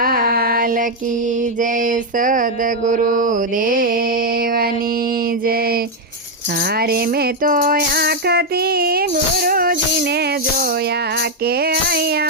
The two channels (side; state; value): both; normal; correlation 0.02